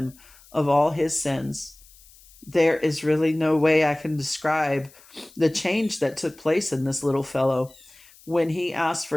of all his sins. There is really no way I can describe the change that took place in this little fellow. When he asked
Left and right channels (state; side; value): noise; left; hiss, 25 dB below the sound